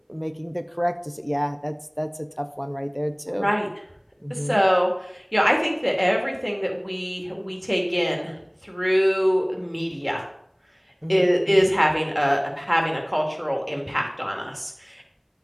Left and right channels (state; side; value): identical; both; correlation 1.00